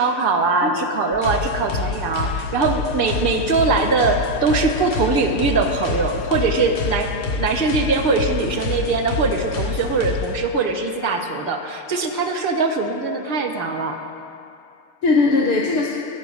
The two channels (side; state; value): right; late; 6.7 ms